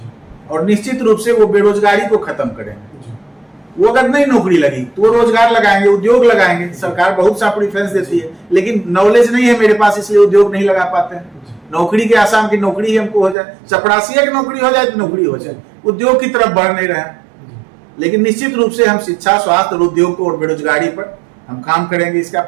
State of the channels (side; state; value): left; drops out; at 13.4 s